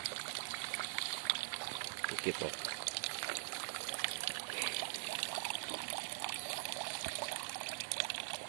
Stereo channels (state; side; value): silent; left; digital silence